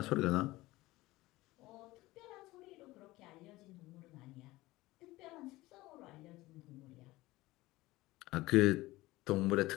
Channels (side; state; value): right; quieter; 19.0 dB